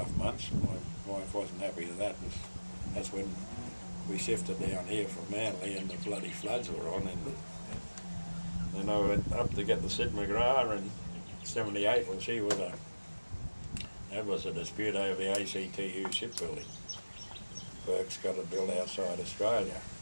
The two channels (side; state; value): both; inverted; correlation -1.00